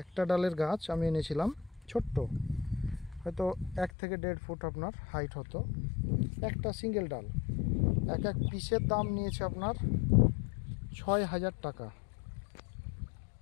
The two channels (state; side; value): drops out; right; at 3.9 s